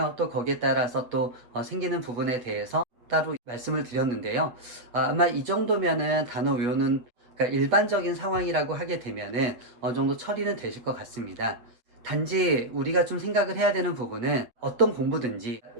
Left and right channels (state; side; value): late; left; 8.1 ms